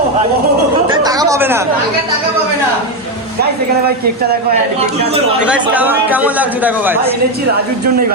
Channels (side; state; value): both; normal; correlation 0.08